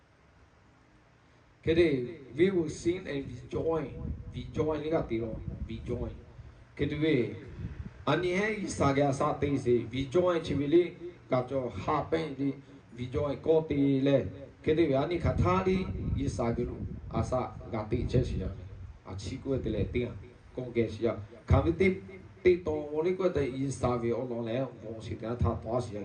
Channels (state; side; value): identical; both; correlation 1.00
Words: kiri we will sing and we join liga tiro we join kiri we ani hai yisagya sa te se we join chivili kacho happen di we join Koti le Kediani Katali Yisagiru Asa Gati Chesia a Chico de Letia Congesia Kamiti Tito Molico de Isavi Olole Monsita Tasia